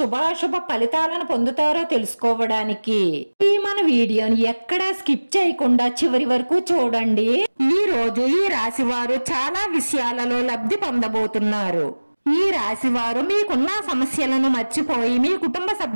ఫలితాలను పొందుతారో తెలుసుకోవడానికి ఈ మన వీడియోని ఎక్కడా స్కిప్ చేయకుండా చివరి వరకు చూడండి। ఈ రోజు ఈ రాశి వారు చాలా విషయాలలో లబ్ధి పొందబోతున్నారు। ఈ రాశి వారు మీకున్న సమస్యలను మర్చిపోయి మీ కుటుంబ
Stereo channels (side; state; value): both; inverted; correlation -1.00